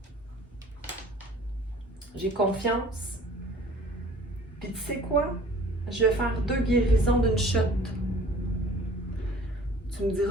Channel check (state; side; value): normal; both; correlation 0.50